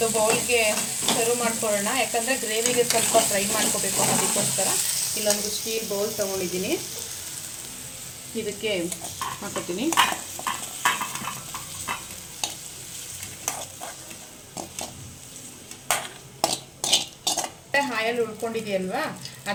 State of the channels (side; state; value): both; identical; correlation 1.00